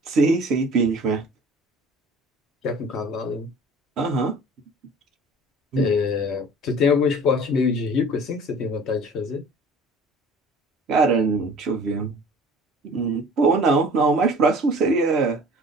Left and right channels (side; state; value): both; normal; correlation 0.45